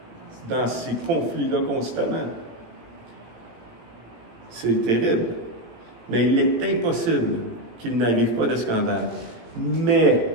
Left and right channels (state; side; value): late; left; 17 ms